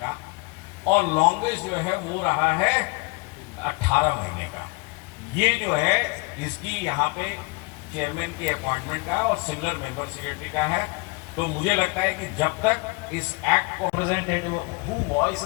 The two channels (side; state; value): right; quieter; 27.7 dB